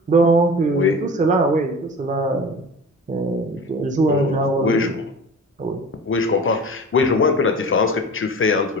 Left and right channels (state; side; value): normal; both; correlation 0.37